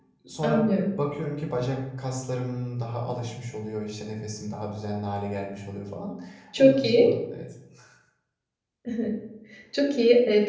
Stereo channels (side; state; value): both; identical; correlation 1.00